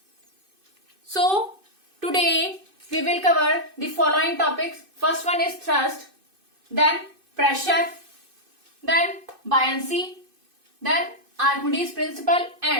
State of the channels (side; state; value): left; late; 2.5 ms